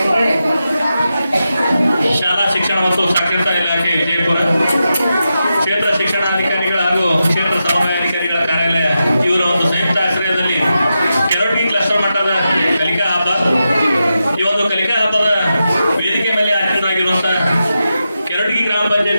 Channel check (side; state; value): both; inverted; correlation -0.89